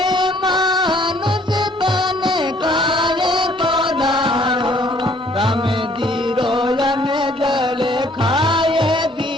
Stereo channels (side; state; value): both; normal; correlation 0.61